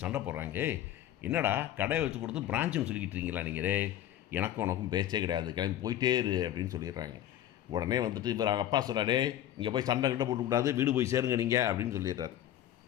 சண்டை போடுறாங்க, என்னடா கடையை வச்சு கொடுத்து பிரான்ச்சுன்னு சொல்லிக்கிட்டு இருக்கீங்களா நீங்கள்? எனக்கும் உனக்கும் பேச்சே கிடையாது, கிளம்பி போயிட்டே இரு அப்படின்னு சொல்லிடுறாங்க. உடனே வந்துட்டு இவர் அப்பா சொல்கிறாடே, இங்கே போய் சண்டை போட்டுக்கூடாது, வீடு போய் சேருங்க நீங்கள் அப்படின்னு சொல்லிடுறாரு.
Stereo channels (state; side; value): quieter; right; 12.1 dB